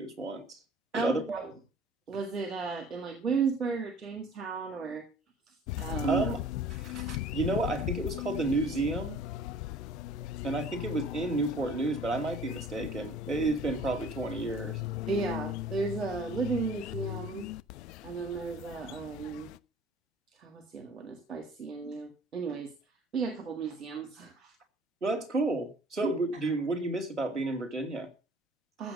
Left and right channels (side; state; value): both; normal; correlation 0.50